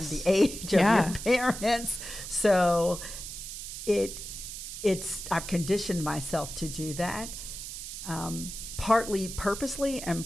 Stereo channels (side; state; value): right; noise; hiss, 9 dB below the sound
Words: the age of your parents. So I've conditioned myself to do that, partly purposely